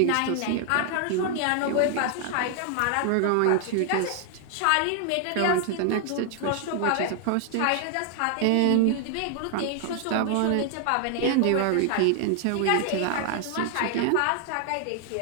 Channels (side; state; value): both; different; correlation 0.00